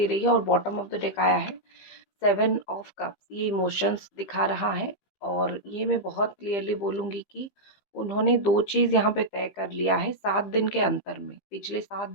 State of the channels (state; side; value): late; right; 15 ms